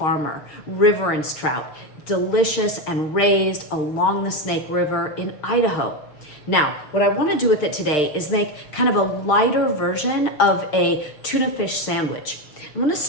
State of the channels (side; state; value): right; late; 6.6 ms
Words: Riverence trout, delicious and raised along the Snake River in Idaho. Now, what I want to do with it today is make kind of a lighter version of a tuna fish sandwich. I'm going to